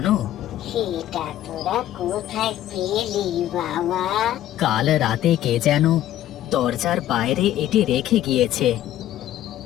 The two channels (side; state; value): right; quieter; 12.8 dB